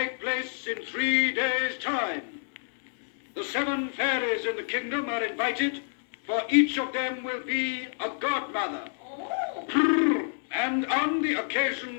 place in 3 days' time. The 7 fairies in the kingdom are invited, for each of them will be a godmother. And on the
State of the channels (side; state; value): right; silent; 59 dB below the other